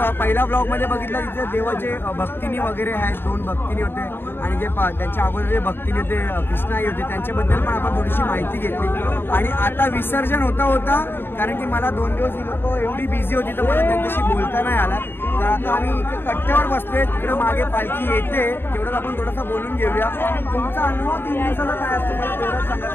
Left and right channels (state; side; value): late; right; 0.10 ms